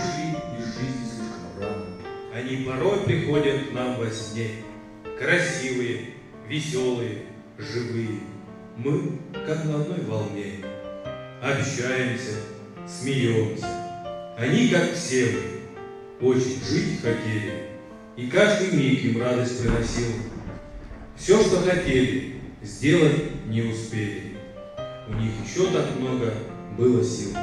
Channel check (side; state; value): both; identical; correlation 1.00